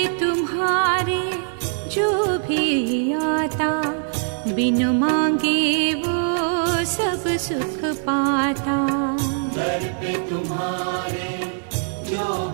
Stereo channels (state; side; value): silent; left; 64 dB below the other